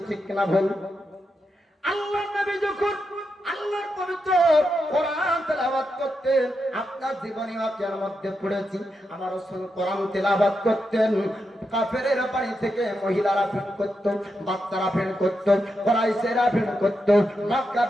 ঠিক কিনা ভুল? আল্লাহর নবী যখন আল্লাহর পবিত্র কোরআন তেলাওয়াত করতেন, আপনার জীবনী ওয়াকিয়ার মধ্যে পড়েছি, আমার রাসূল কোরআন তেলাওয়াত করতেন, কাফেরের বাড়ি থেকে মহিলারা ভিড় করত, বাচ্চারা ভিড় করত, কুরাইশেরা ভিড় করত,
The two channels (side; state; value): both; normal; correlation 0.85